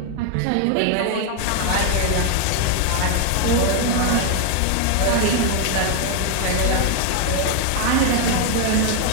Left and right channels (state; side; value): different; both; correlation 0.00